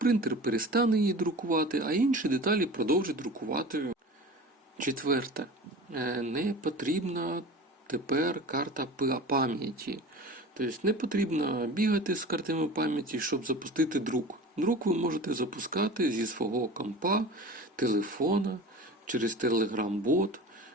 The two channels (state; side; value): normal; both; correlation 0.36